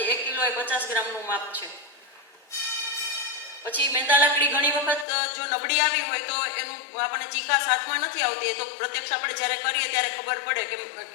1 કિલો એ 50 ગ્રામનું માપ છે. પછી મેંદા લાકડી ઘણી વખત જો નબળી આવી હોય તો એનું આપણને ચીકાશ હાથમાં નથી આવતી, તો પ્રત્યક્ષ આપણે જ્યારે કરીએ ત્યારે ખબર પડે કે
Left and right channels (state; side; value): drops out; right; at 5.1 s